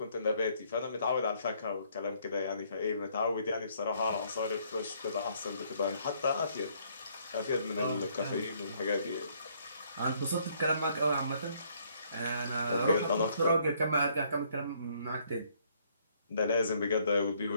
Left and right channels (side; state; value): both; inverted; correlation -0.66